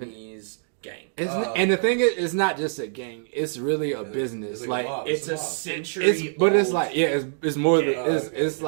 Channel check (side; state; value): left; silent; digital silence